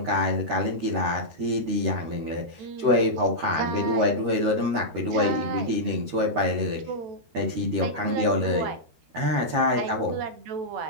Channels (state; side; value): late; left; 13 ms